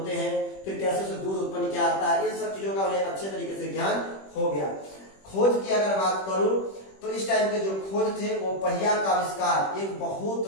हैं, फिर कैसे उसे दूध उत्पन्न किया जाता है, इन सब चीजों का उन्हें अच्छे तरीके से ज्ञान हो गया। खोज की अगर बात करूं तो इस टाइम के जो खोज थे वो पहिया का आविष्कार एक बहुत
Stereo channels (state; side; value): late; right; 21 ms